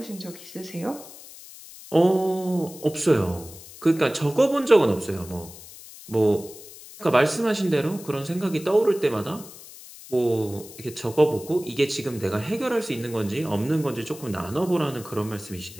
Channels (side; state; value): left; noise; hiss, 17 dB below the sound